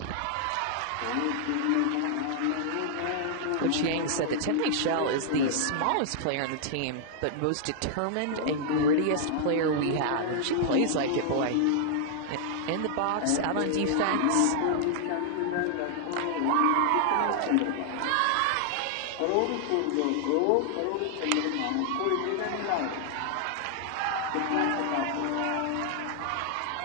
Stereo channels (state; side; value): different; both; correlation -0.01